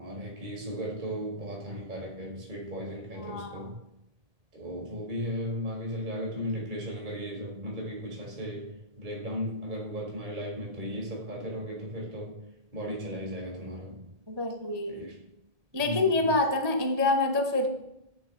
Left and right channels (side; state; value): left; late; 1.8 ms